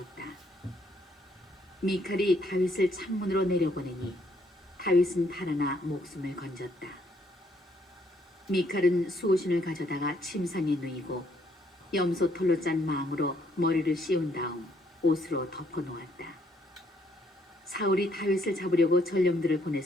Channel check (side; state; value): both; normal; correlation 0.69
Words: 미칼이 다윗을 창문으로 내려보내니 다윗은 달아나 목숨을 건졌다. 미칼은 수호신을 가져다가 침상에 누이고 염소 털로 짠 망으로 머리를 씌운 다음 옷으로 덮어놓았다. 사울이 다윗을 잡으려고 전령들을